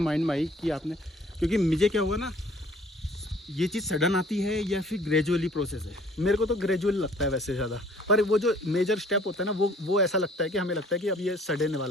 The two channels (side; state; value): both; normal; correlation 0.55